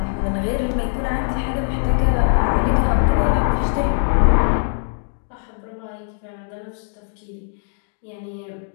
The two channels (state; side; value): silent; right; digital silence